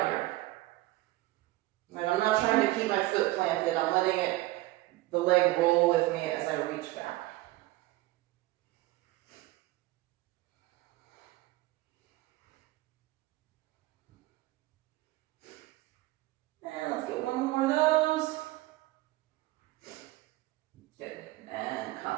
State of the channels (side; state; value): left; quieter; 18.6 dB